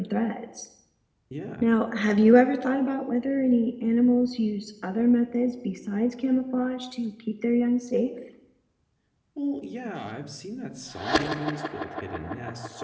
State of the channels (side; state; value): both; identical; correlation 1.00